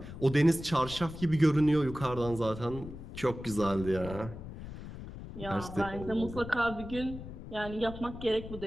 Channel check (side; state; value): left; noise; rumble, 11 dB below the sound